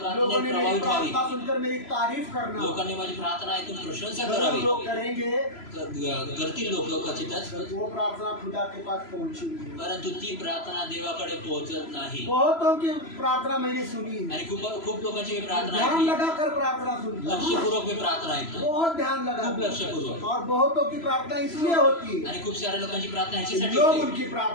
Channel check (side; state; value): right; late; 3.0 ms